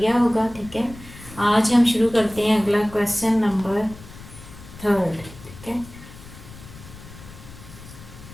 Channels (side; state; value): left; noise; rumble, 17 dB below the sound